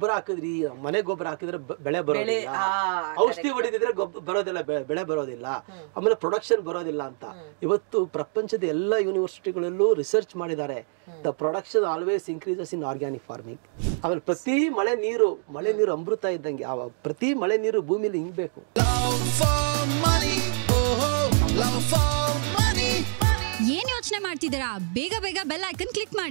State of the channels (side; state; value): left; silent; 61 dB below the other